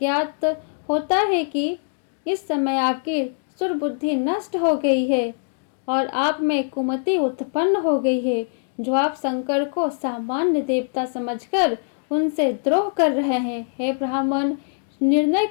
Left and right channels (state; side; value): silent; right; digital silence